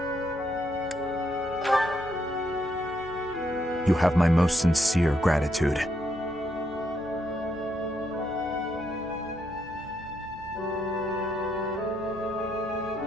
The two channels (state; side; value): normal; both; correlation 0.77